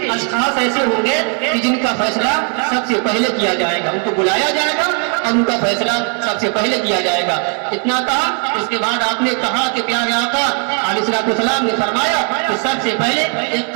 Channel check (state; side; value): quieter; left; 39.0 dB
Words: اشخاص ایسے ہوں گے کہ جن کا فیصلہ سب سے پہلے کیا جائے گا، ان کو بلایا جائے گا اور ان کا فیصلہ سب سے پہلے کیا جائے گا۔ اتنا کہا، اس کے بعد آپ نے کہا کہ پیارے آقا علیہ السلام نے فرمایا کہ سب سے پہلے ایک